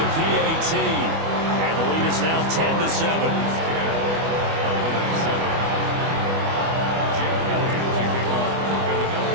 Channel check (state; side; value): late; left; 25 ms